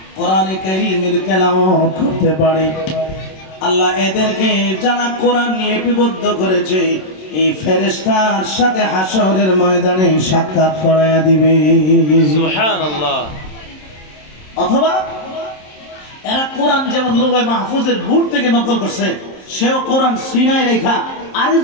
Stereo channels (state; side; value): late; right; 27 ms